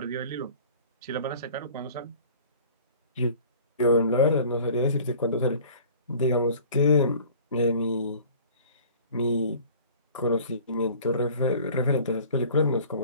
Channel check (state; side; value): inverted; both; correlation -0.47